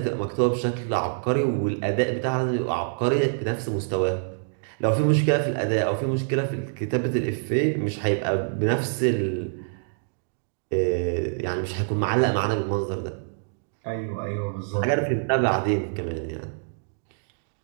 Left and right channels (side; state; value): left; silent; digital silence